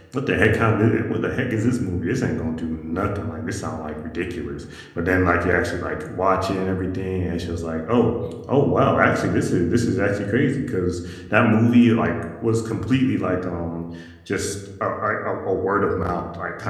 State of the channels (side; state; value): both; identical; correlation 1.00